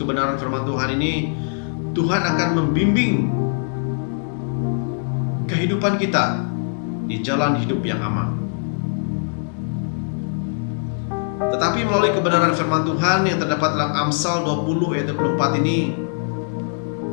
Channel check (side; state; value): right; silent; 64 dB below the other